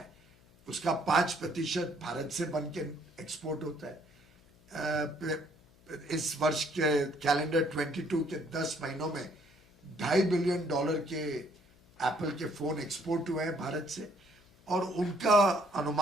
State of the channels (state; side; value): noise; left; hum, 28 dB below the sound